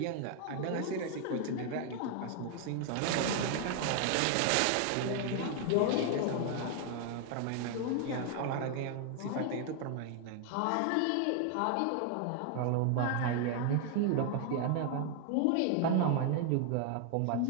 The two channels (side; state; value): both; different; correlation 0.00